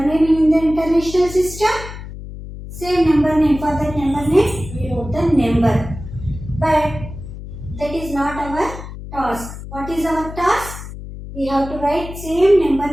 name in the international system. Same number name, for that number name we wrote the number. But that is not our task. What is our task? We have to write same number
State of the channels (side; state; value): left; noise; hum, 11 dB below the sound